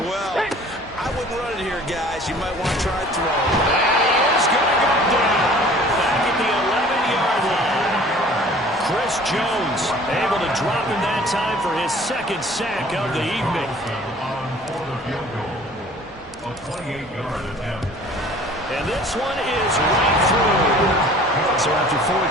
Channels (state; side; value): normal; both; correlation 0.49